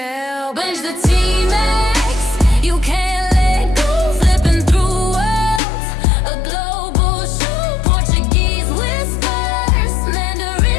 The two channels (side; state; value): right; drops out; at 5.6 s